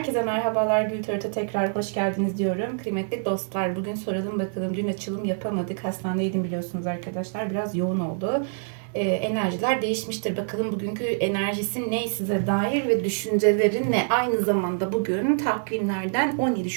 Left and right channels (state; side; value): silent; left; digital silence